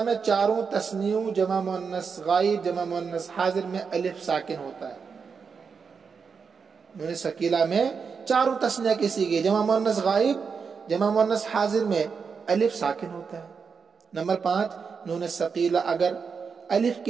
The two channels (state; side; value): quieter; left; 5.7 dB